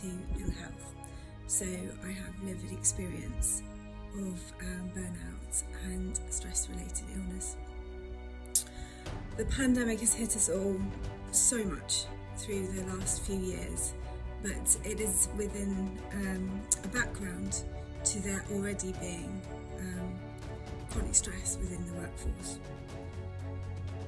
ill health. So I have lived experience of burnout and stress-related illness. The pandemic has hit us all so much through the last few years, but it is within a background to there already being chronic stress within the workforce.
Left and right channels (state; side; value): identical; both; correlation 1.00